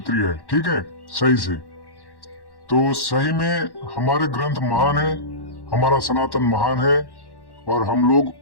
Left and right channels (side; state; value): right; late; 1.1 ms